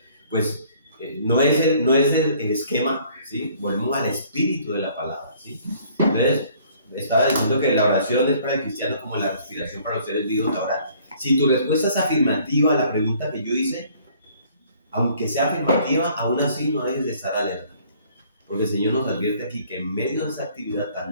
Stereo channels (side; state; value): both; inverted; correlation -0.58